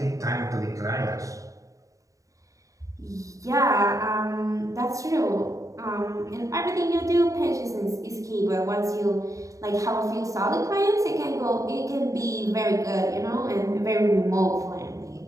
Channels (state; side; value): late; left; 0.16 ms